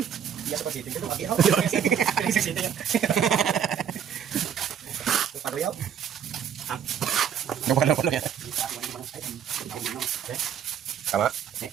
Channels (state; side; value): quieter; left; 8.5 dB